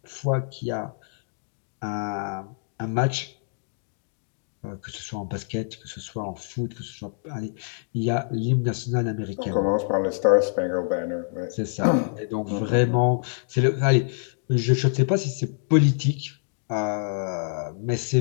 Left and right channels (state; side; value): silent; right; digital silence